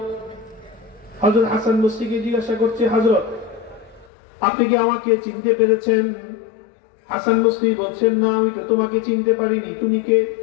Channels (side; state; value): right; drops out; at 4.1 s